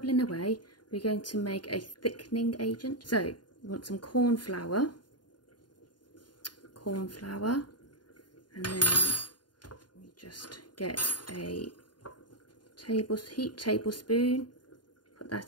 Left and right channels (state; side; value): late; right; 0.70 ms